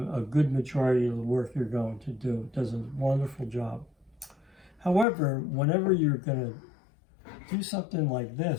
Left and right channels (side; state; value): right; drops out; at 5.1 s